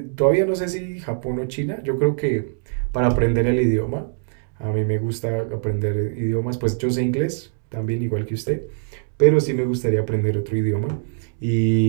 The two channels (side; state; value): left; silent; digital silence